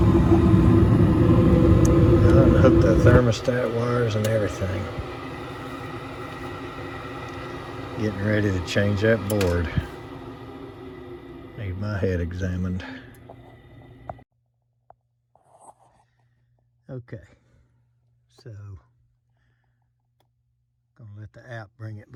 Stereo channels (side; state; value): both; identical; correlation 1.00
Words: Unhook the thermostat wires and everything. Getting ready to change that board. Need my head examined. Okay, so gonna let the app bring it